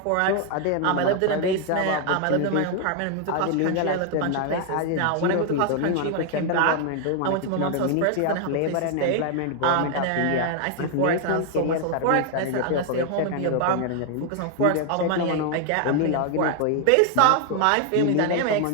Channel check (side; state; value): both; different; correlation 0.00